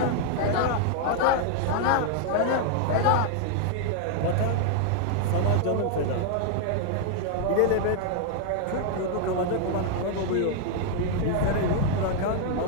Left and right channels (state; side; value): different; both; correlation 0.00